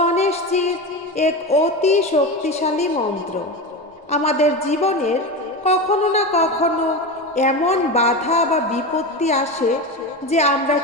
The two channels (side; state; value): both; normal; correlation 0.22